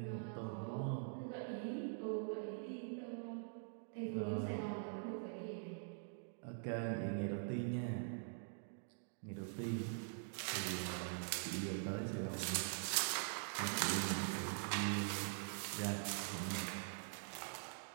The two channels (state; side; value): silent; left; digital silence